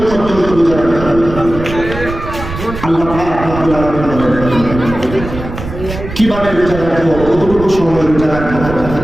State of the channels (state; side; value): noise; right; rumble, 9 dB below the sound